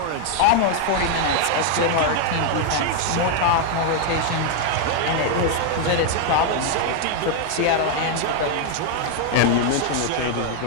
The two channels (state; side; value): different; both; correlation 0.00